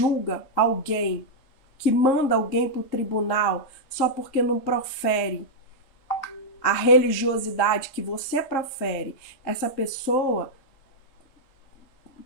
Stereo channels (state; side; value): late; right; 3.8 ms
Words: alguém, que manda alguém para o tribunal só porque não profere a religiosidade que você profere? Essa pessoa